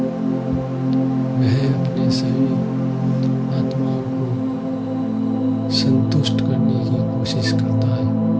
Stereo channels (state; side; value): identical; both; correlation 1.00